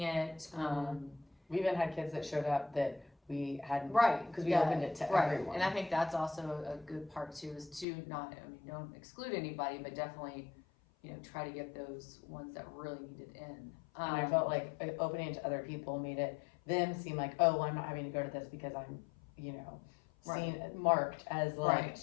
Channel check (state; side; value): drops out; right; at 7.9 s